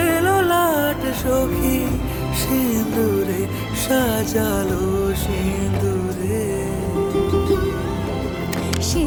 ললাট সখী সিঁদুরে সাজালো সিঁদুরে। সে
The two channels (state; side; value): identical; both; correlation 1.00